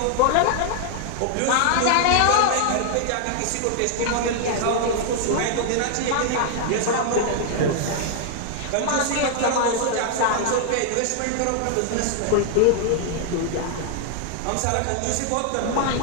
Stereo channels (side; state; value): both; different; correlation 0.00